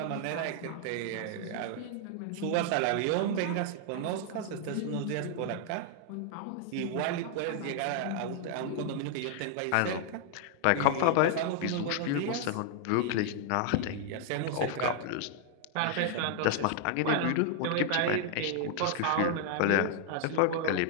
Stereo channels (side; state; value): both; different; correlation 0.00